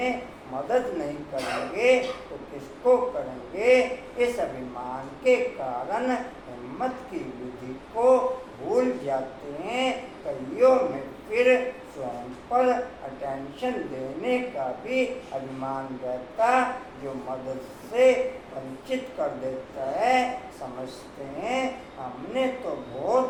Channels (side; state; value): both; identical; correlation 1.00